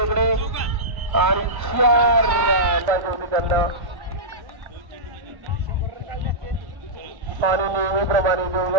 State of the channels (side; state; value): left; late; 1.1 ms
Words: आणि 4 पाहिजे होती त्यांना. आणि नेहमीप्रमाणे